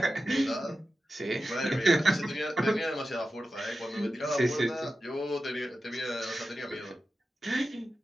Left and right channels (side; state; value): both; normal; correlation 0.92